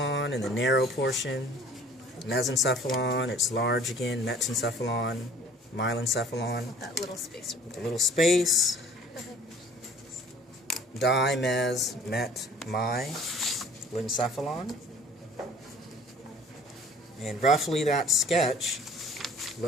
in the narrow portion, mesencephalon, it's large again, metencephalon, myelencephalon, That little space. a little space, di, mes, met, my, lencephalon. And roughly that sketch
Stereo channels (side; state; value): both; normal; correlation 0.50